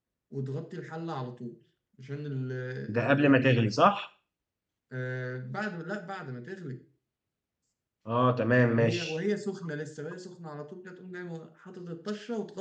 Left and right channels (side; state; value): both; identical; correlation 1.00